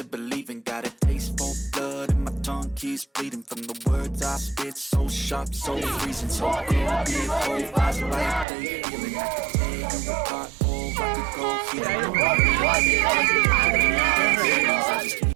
believing. Got a taste for blood and my tongue keeps bleeding from the words I spit. So sharp, so freezing, so cold. Be it cold, eyes like they feeling. I could tear you apart or I could go healing.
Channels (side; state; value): left; drops out; at 8.5 s